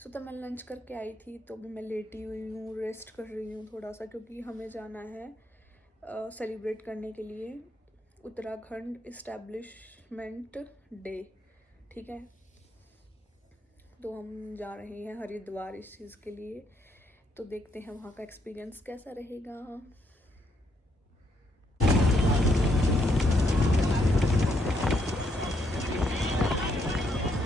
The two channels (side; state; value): both; normal; correlation 0.74